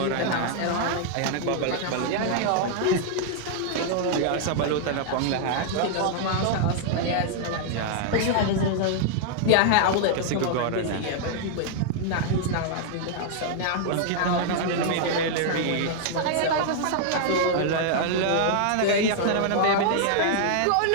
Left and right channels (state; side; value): different; both; correlation -0.01